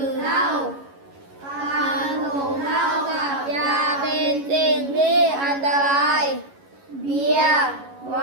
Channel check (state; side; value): late; left; 11 ms